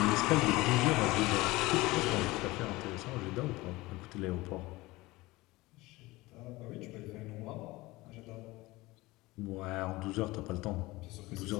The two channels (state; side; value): quieter; right; 20.5 dB